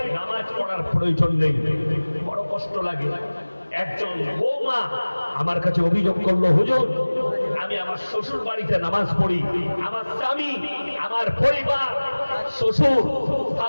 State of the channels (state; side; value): inverted; both; correlation -1.00